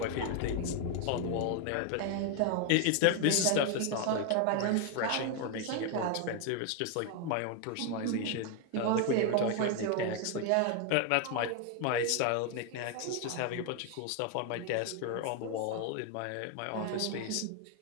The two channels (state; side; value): different; both; correlation 0.01